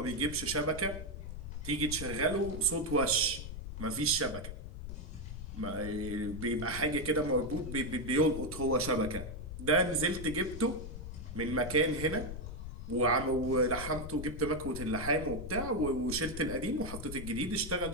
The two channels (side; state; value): left; noise; rumble, 8 dB below the sound